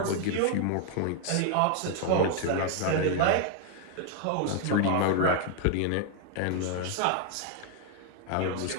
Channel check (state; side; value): different; both; correlation 0.01